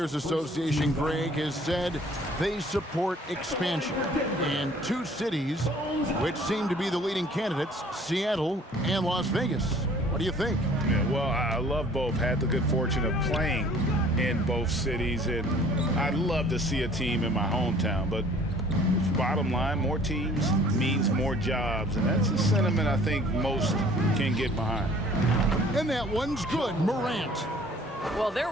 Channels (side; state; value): both; normal; correlation 0.53